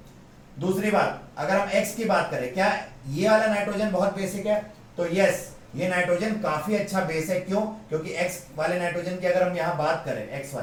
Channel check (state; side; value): identical; both; correlation 1.00